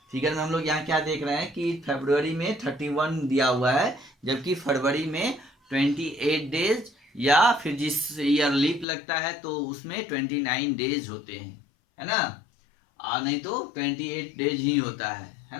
फिगर में हम लोग यहाँ क्या देख रहे हैं कि फरवरी में 31 दिया हुआ है, जबकि फरवरी में 28 डेज, या फिर जिस ईयर लीप लगता है तो उसमें 29 डेज होते हैं, है ना। नहीं तो 28 डेज ही होता है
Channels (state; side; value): drops out; right; at 8.8 s